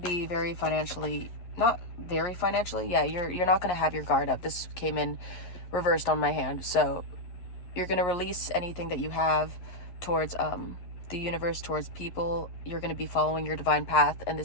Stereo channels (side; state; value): right; late; 11 ms